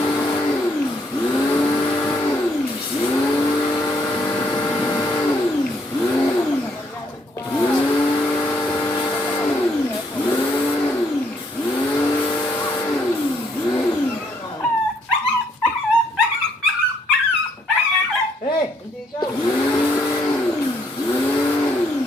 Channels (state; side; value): normal; both; correlation 0.70